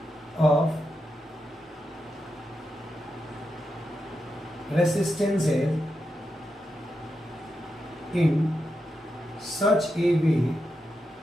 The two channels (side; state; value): both; normal; correlation 0.86